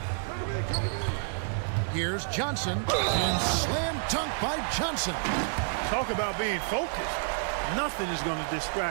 Here's Johnson. And slam dunk by Johnson. Talk about being focused. Nothing is going to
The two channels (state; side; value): silent; left; digital silence